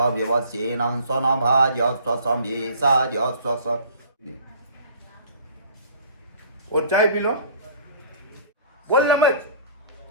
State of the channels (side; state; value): both; inverted; correlation -0.49